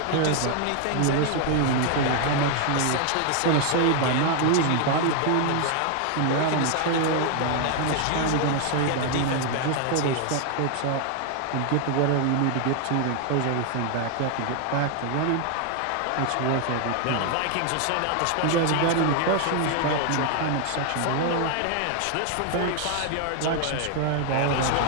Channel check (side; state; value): both; different; correlation 0.00